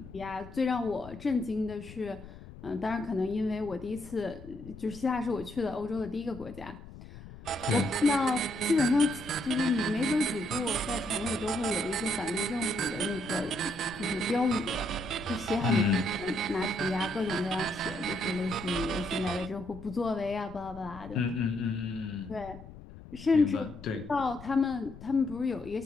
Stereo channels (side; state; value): left; noise; rumble, 16 dB below the sound